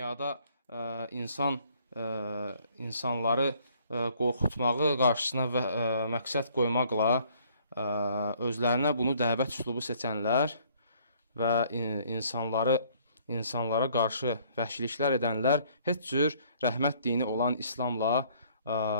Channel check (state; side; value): inverted; both; correlation -0.61